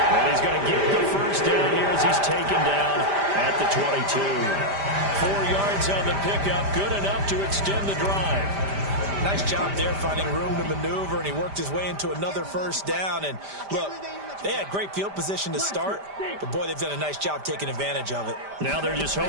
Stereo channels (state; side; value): late; left; 5.0 ms